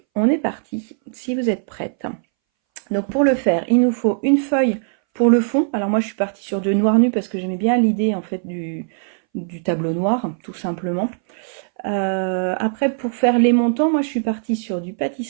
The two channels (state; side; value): silent; left; 63 dB below the other